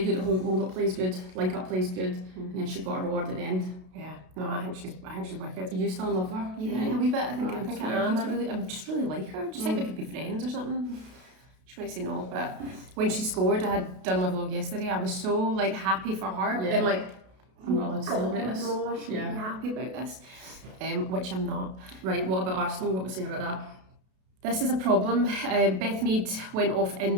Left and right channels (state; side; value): late; left; 32 ms